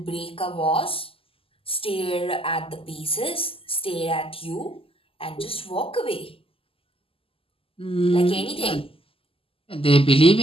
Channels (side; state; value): right; late; 0.26 ms